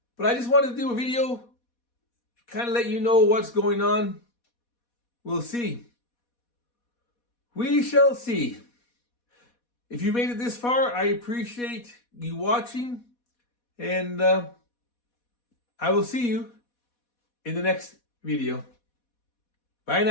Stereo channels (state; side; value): late; right; 4.2 ms